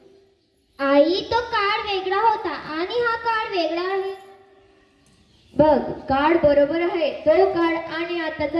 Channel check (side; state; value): both; identical; correlation 1.00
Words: आई, तो काळ वेगळा होता आणि हा काळ वेगळा आहे. बघ, काळ बरोबर आहे. तो काळ आणि आताचा